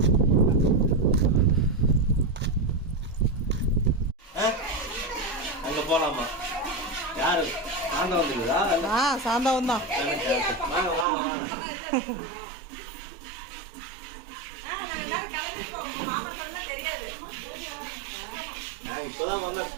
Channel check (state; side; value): drops out; left; at 11.1 s